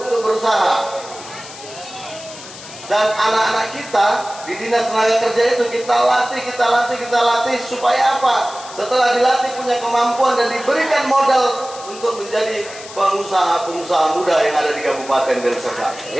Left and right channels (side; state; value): left; noise; hiss, 15 dB below the sound